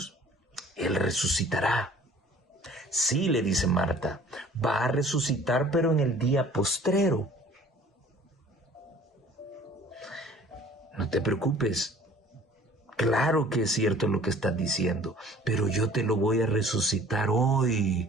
Él resucitará. Sí, le dice Marta, va a resucitar, pero en el día postrero. No te preocupes. Claro que es cierto lo que estás diciendo, pero yo te lo voy a resucitar hoy,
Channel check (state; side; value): normal; both; correlation 0.51